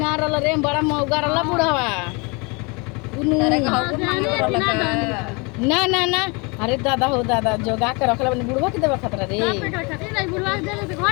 रहल रे बड़ा मौगा रहल बुढ़वा तारे घाव मांगे ना ना ना अरे दादा हो दादा जोगा के रखले बनी बुढ़वा के देवे खतरा रे बुढ़वा देले तो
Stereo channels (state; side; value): quieter; right; 29.8 dB